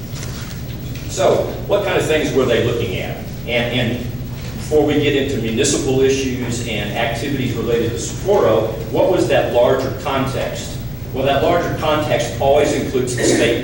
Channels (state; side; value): noise; left; hum, 17 dB below the sound